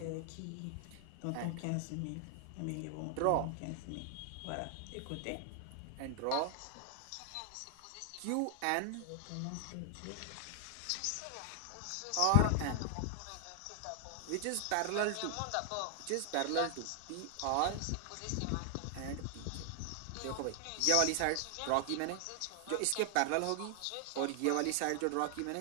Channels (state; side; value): different; both; correlation 0.00